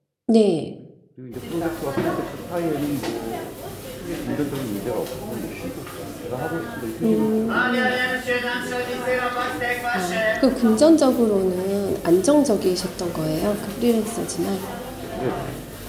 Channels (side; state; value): both; identical; correlation 1.00